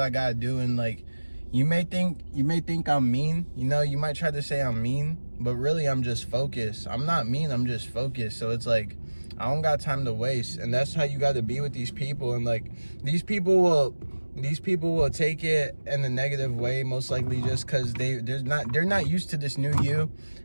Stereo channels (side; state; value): both; inverted; correlation -1.00